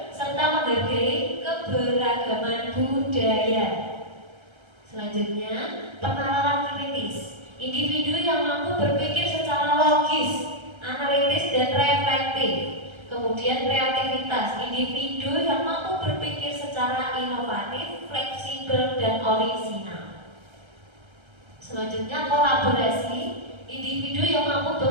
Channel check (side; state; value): left; late; 1.3 ms